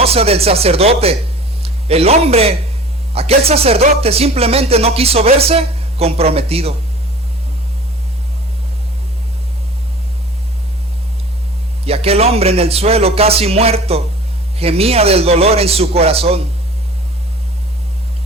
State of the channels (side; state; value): both; normal; correlation 0.43